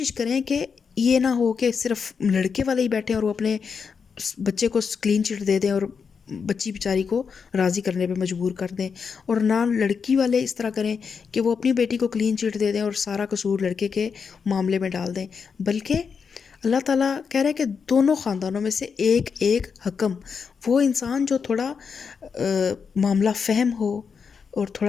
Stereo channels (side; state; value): right; quieter; 6.0 dB